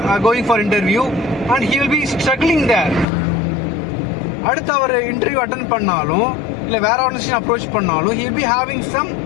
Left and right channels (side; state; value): right; drops out; at 3.1 s